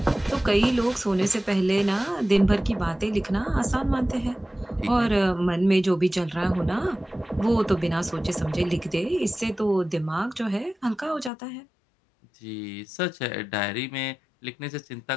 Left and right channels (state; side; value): drops out; right; at 11.3 s